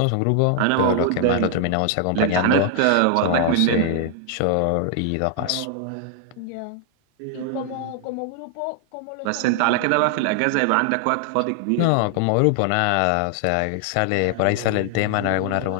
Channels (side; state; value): both; different; correlation 0.00